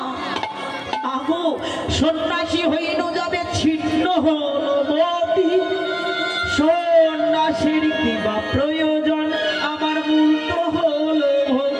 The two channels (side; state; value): both; identical; correlation 1.00